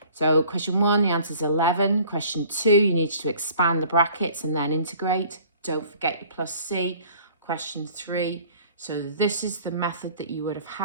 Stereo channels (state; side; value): inverted; both; correlation -0.51